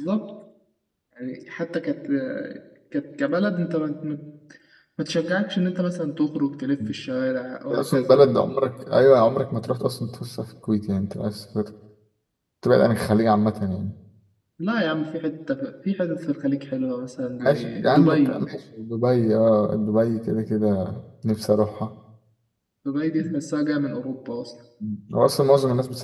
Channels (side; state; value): both; identical; correlation 1.00